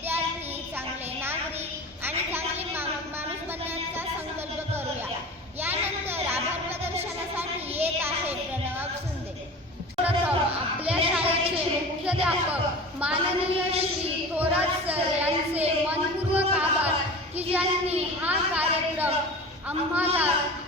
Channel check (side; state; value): both; normal; correlation 0.35